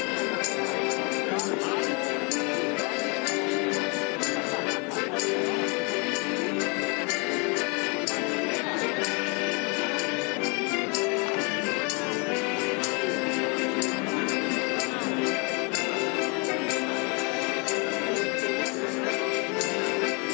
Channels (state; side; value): quieter; right; 32.7 dB